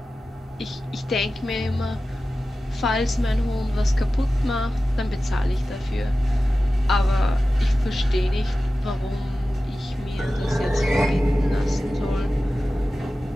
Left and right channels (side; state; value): both; normal; correlation 0.95